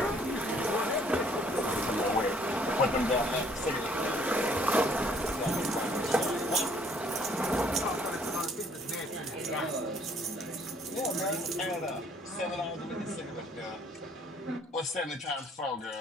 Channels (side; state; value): both; normal; correlation 0.61